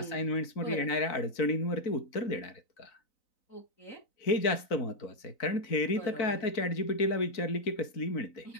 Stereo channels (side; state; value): right; late; 3.9 ms